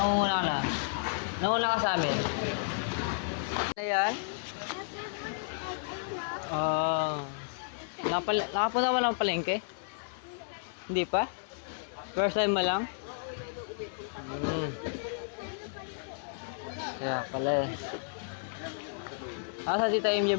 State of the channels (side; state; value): right; silent; 56 dB below the other